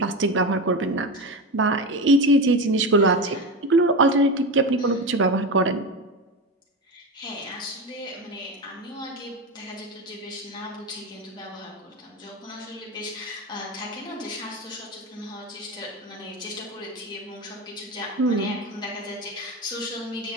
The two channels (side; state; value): both; normal; correlation 0.20